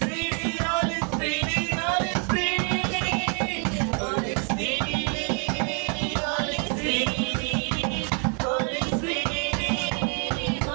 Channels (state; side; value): quieter; left; 38.2 dB